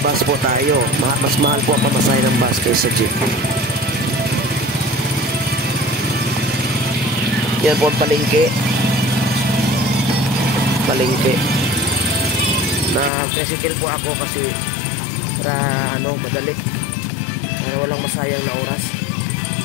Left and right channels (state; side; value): drops out; right; at 13.1 s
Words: po tayo. Mas mahal po ang pamasahe ng bus kaysa jeep. Yan po ang palengke. Na-tricycle po ako kasi para madali, para walang masayang na oras.